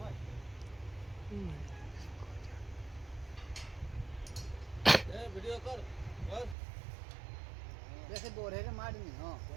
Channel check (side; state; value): left; drops out; at 6.6 s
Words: वीडियो कर जैसे बोरे रे मार नहीं हां